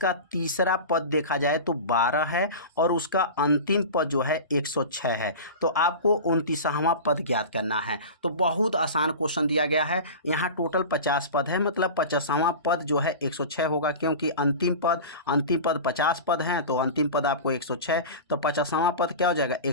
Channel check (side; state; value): both; inverted; correlation -0.31